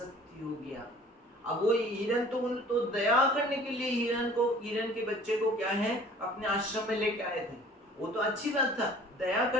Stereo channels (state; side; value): normal; both; correlation 0.50